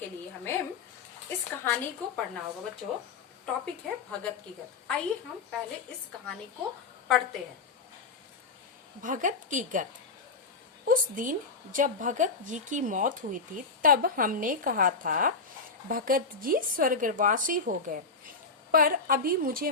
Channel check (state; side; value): quieter; right; 4.3 dB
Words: लिए हमें इस कहानी को पढ़ना होगा बच्चों। टॉपिक है भगत की गत। आइए हम पहले इस कहानी को पढ़ते हैं। भगत की गत। उस दिन जब भगत जी की मौत हुई थी तब हमने कहा था भगत जी स्वर्गवासी हो गए, पर अभी मुझे